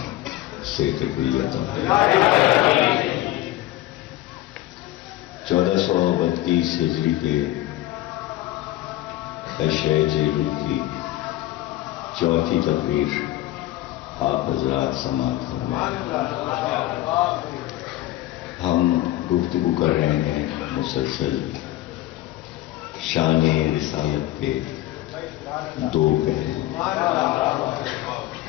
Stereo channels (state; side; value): quieter; right; 15.7 dB